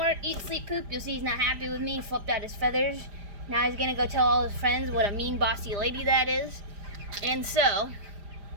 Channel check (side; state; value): left; late; 5.0 ms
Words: eat, sleep, poop. You'll see he's not happy with me. He flipped out his feathers. Now he's gonna go tell all his friends what a mean, bossy lady that is. And so,